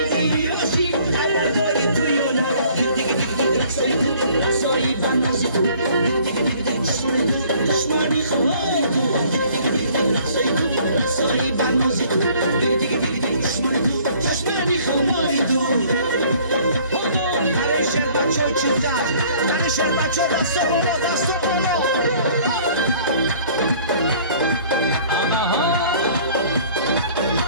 خبرداری تویونا دیگه رسایی بنازی تو دیگه دشمانی خواهی تو رسایی بنازی تو دیگه دشمانی تو برای شهر بچه ها چیزه برای شهر بچه ها دستا بالا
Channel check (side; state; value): both; inverted; correlation -0.56